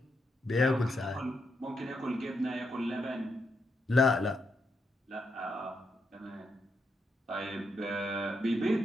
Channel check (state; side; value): normal; both; correlation 0.81